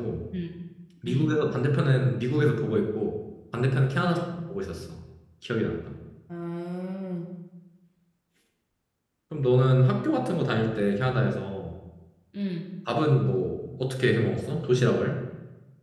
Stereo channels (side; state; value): both; identical; correlation 1.00